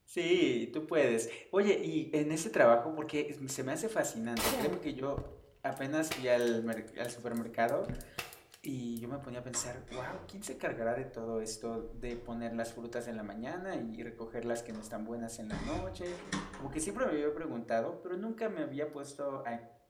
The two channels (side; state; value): both; identical; correlation 1.00